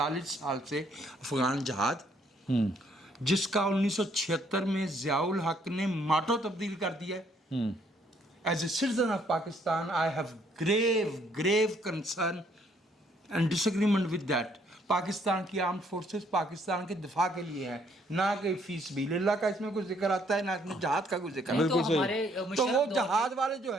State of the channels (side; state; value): both; normal; correlation 0.67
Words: سال سے افغان جہاد جس کا 1976 میں ضیاء الحق نے ماٹو تبدیل کر دیا ہے. As a citizen of Pakistan, I have grave concern and disagreement with that. Pakistan کی آرمڈ فورسز پاکستان کے دفاع کے لیے ہیں, نہ کہ فی سبیل اللہ کا اس میں کوئی ذکر آتا ہے نہ اس میں جہاد کا کوئی ذکر آتا ہے. تو وہ جہاد والے